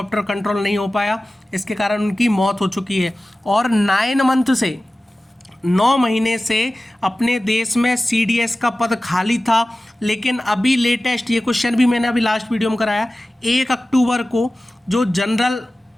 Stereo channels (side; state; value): both; normal; correlation 0.96